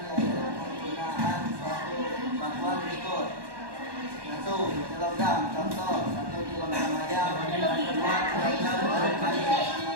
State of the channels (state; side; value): late; left; 1.1 ms